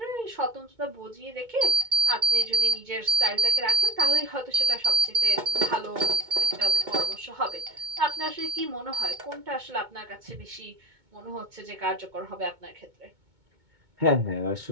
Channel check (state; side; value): late; left; 2.2 ms